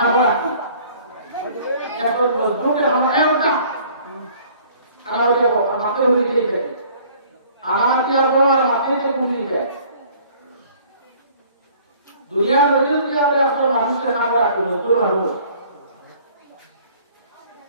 আছি এত মজবুত আমরা একটা আর আমাকে উড়িয়ে দিতে আমাকে আবার আপনাকে বুঝিয়ে দেয় দুনিয়ার মধ্যে আমরা একটা মানুষের খাবার আছি মজবুত মানুষ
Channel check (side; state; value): both; inverted; correlation -0.54